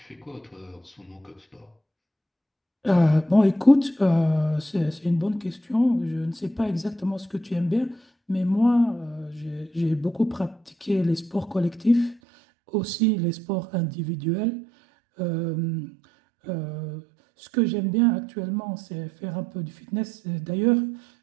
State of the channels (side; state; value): left; drops out; at 12.2 s